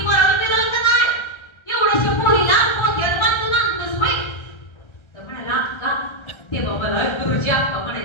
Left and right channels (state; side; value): late; right; 1.3 ms